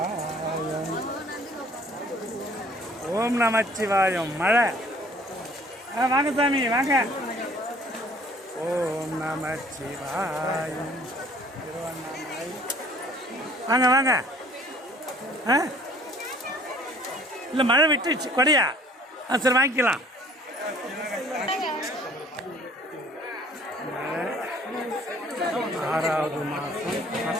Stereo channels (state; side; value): normal; both; correlation 0.54